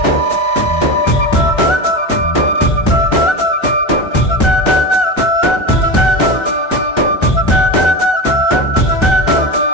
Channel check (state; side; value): late; right; 1.3 ms